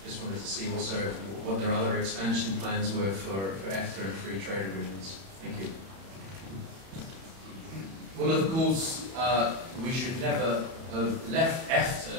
just wanted to see also what their other expansion plans were for EFTA and free trade agreements. Thank you. Well, of course, we should never have left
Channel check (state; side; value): late; left; 31 ms